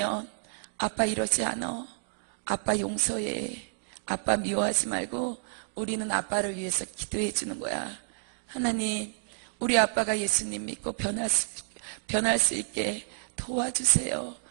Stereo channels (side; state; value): left; silent; digital silence